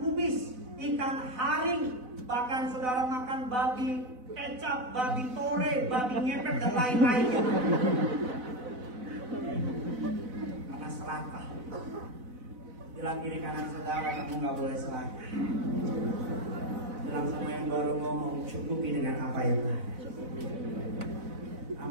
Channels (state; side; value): late; left; 4.0 ms